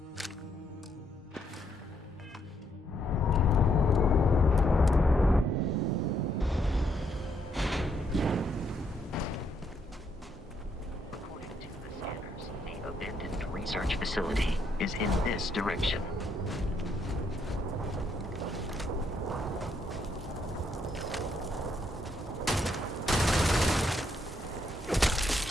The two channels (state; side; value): normal; both; correlation 0.74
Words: Research facility is in this direction.